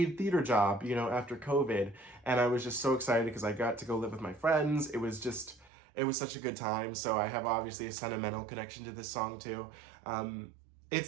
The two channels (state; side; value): drops out; left; at 5.7 s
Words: theater job, after COVID, and I was just so excited because I got to go live with my friends. It was such a good time, so I have obviously a sentimental connection to this song too.